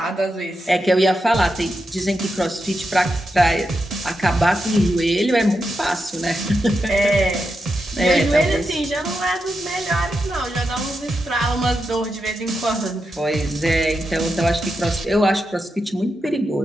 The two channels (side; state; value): both; normal; correlation 0.87